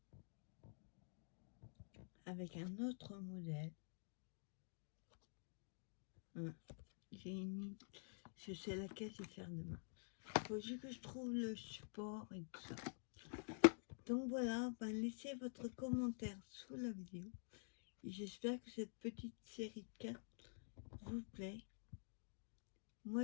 avec un autre modèle. Je sais laquelle je vais faire demain. Il faut juste que je trouve le support et tout ça. Donc voilà, laissez votre commentaire sous la vidéo. Et j'espère que cette petite série de 4 vous plaît.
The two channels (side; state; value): right; silent; digital silence